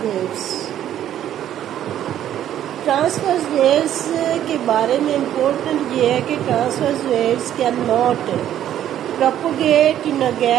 waves. Transverse waves के बारे में important ये है कि transverse waves can not propagate in a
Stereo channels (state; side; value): quieter; left; 11.3 dB